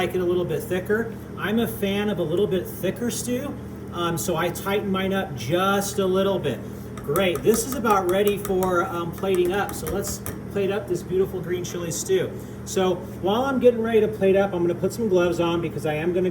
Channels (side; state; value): both; identical; correlation 1.00